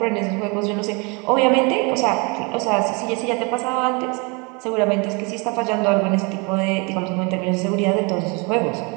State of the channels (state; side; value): quieter; left; 30.5 dB